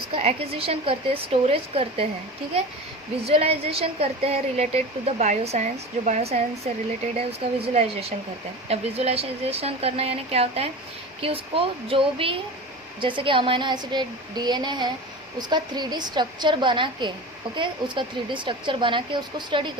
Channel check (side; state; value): both; normal; correlation 0.31